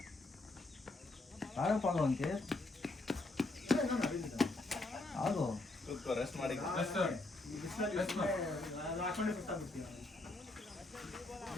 ಆಡಪ್ಪಾಗ ಅಂತೆ ಆಗೋ ಕೂತ್ಕೋ, ರೆಸ್ಟ್ ಮಾಡಿ. Rest. Rest ಮಾಡು. ನಾನು ಹಾಕೊಂಡೆ ಸುತ್ತಾಗ್ಬಿಡ್ತೀನಿ.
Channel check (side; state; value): right; quieter; 3.0 dB